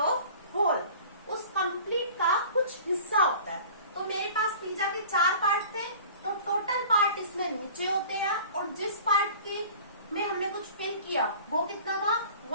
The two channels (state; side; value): inverted; both; correlation -0.44